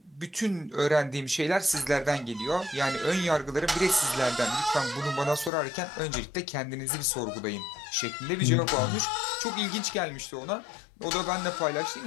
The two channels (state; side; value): drops out; right; at 5.5 s